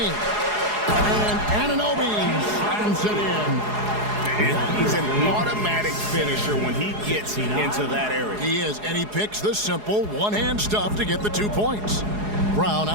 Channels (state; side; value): late; left; 4.8 ms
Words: And Anunoby slams it in. And he's an automatic finisher when he gets into that area. He is, and he picks the simple one-hand stuff to get the 2 points. Brown